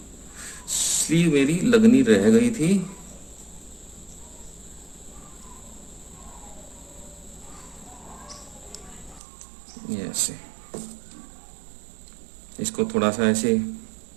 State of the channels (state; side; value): drops out; left; at 9.2 s